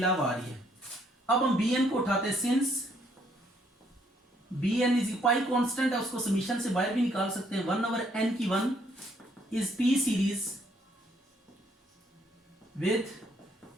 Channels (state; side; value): normal; both; correlation 0.68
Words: आ रही है। अब हम bn को उठाते हैं, since bn is pi constant है, उसको समीशन से बाहर भी निकाल सकते हैं, 1 ओवर n की 1 is p series with